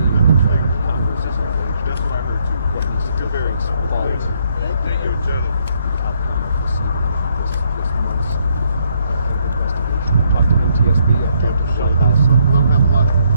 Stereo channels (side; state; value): both; inverted; correlation -0.71